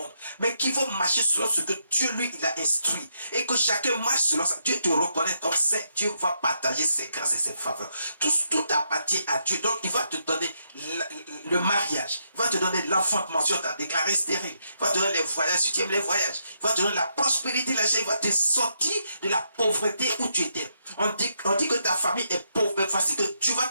mais qui vont marcher selon ce que Dieu lui il a instruit. Et que chacun marche selon ça. Dieu te reconnaît comme saint. Dieu va partager ses grâces et ses faveurs. Tout appartient à Dieu. Donc il va te donner le mariage. Il va te donner l'enfantement. Tu as déclaré stérile. Il va te donner les voyages. Si tu aimes les voyages. Il va te donner la prospérité. Il va te sortir de la pauvreté où tu étais. On dit que ta famille est pauvre, mais voici que tu vas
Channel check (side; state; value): both; inverted; correlation -0.79